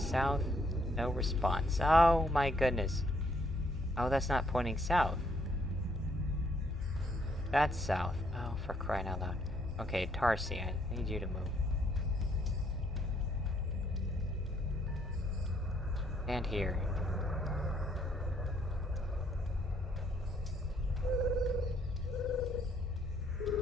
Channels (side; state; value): both; normal; correlation 0.70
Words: No response. Oh my goodness. Oh, that's not pointing south. That's south. Oh, for crying out loud. Okay, Tarsi, I need you to move. And here.